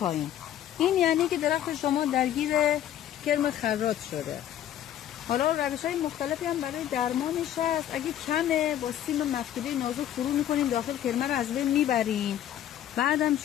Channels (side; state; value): right; quieter; 11.3 dB